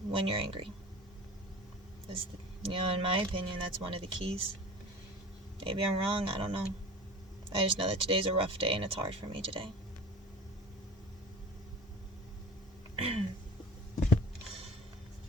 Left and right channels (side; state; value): both; normal; correlation 0.38